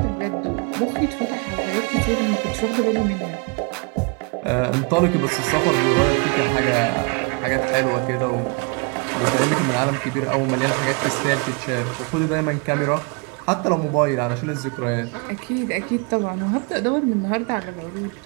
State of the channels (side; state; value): left; quieter; 33.4 dB